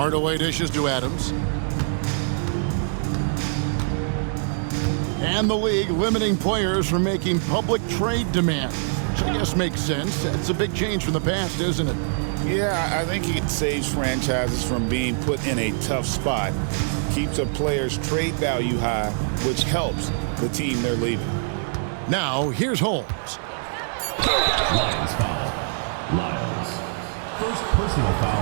dishes to Adams. And the league limiting players from making public trade demands, which I guess makes sense. That's a big change from the past, isn't it? Yeah, I think it saves franchises from being put in a tough spot. Keeps a player's trade value high, which helps the team they're leaving. Now, here's Holmes. Lions foul. Lyles. First personal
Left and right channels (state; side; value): silent; left; digital silence